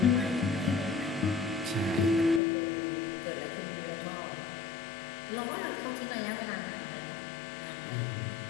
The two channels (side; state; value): right; drops out; at 2.4 s